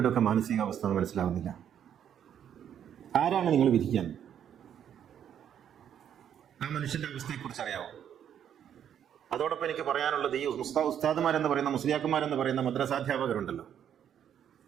ഒക്കെ മാനസികാവസ്ഥ എന്ന് മനസ്സിലാവുന്നില്ല. ആരാണ് നിങ്ങൾ വിധിക്കാൻ? ആ മനുഷ്യന്റെ അവസ്ഥയെക്കുറിച്ച് അറിയാവോ? അതോടൊപ്പം എനിക്ക് പറയാനുള്ളത്, ഈ ഉസ്താദുമാരെന്ന് പറയുന്ന മുസ്ലിയാക്കന്മാരെന്ന് പറയുന്ന മദ്രസാധ്യാപകരുണ്ടല്ലോ,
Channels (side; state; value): left; quieter; 9.3 dB